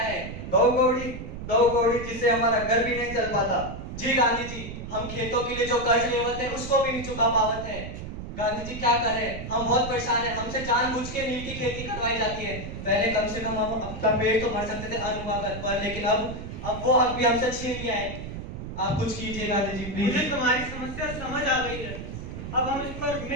है? दो कौड़ी जिससे हमारा घर भी नहीं चल पाता। जी गांधी जी, हम खेतों के लिए जो कर्ज लेवत है उसको भी नहीं चुका पावत है। गांधी जी क्या करें, हम बहुत परेशान हैं। हमसे जानबूझ के नील की खेती करवाई जाती है। पहले कम से कम हम अपना पेट तो भर सकते थे अन्न उगा कर, पर लेकिन अब वो हक भी हमसे छीन लिया है। आप कुछ कीजिए गांधी जी प्लीज। मुझे तुम्हारी समस्या समझ आ गई है, अब हम इस पर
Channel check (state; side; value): noise; right; rumble, 8 dB below the sound